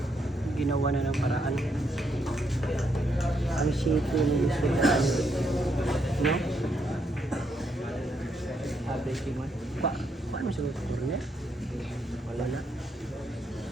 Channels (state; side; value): normal; both; correlation 0.76